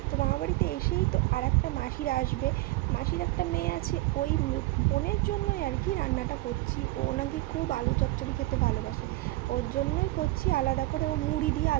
তো মামার বাড়িতে এসেই তো আর একটা মাসিরা আসবে। মাসির একটা মেয়ে আছে, ওই বোনের জন্যই আর কি রান্নাটা করছি। ও নাকি খুব আলু চচ্চড়ি খেতে ভালোবাসে, ওর জন্যই করছি আলাদা করে। ও মুড়ি দিয়ে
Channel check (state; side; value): quieter; left; 19.1 dB